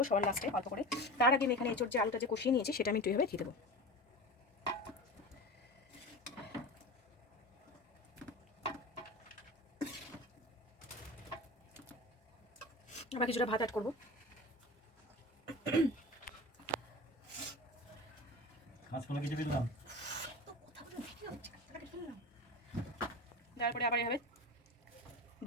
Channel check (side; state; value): both; normal; correlation 0.31